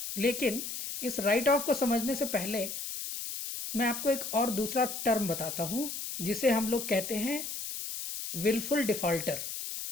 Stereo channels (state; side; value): noise; left; hiss, 6 dB below the sound